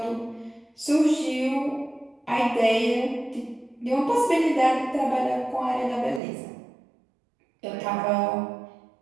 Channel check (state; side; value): drops out; left; at 6.2 s